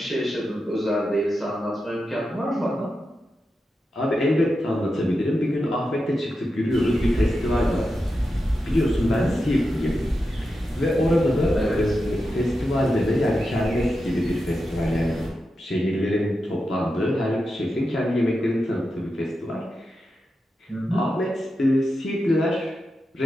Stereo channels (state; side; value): normal; both; correlation 0.89